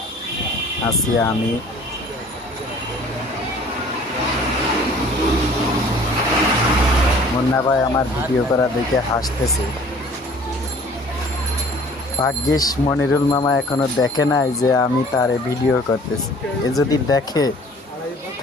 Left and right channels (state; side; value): normal; both; correlation 0.51